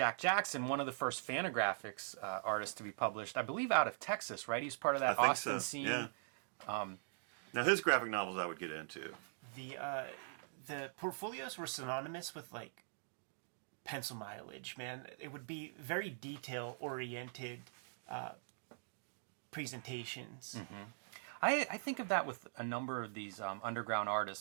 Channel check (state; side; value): silent; left; digital silence